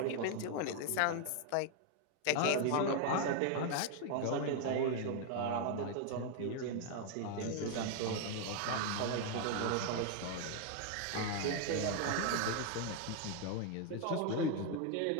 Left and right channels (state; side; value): different; both; correlation 0.00